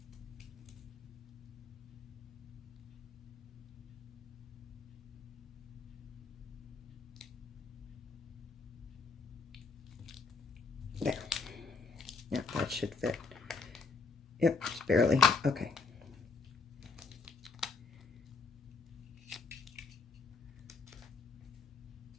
There. Yeah, that should fit. Yep, just barely. Okay.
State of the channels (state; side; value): quieter; right; 4.5 dB